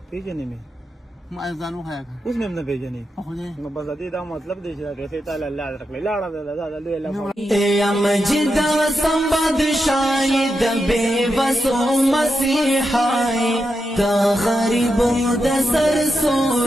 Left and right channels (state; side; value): normal; both; correlation 0.87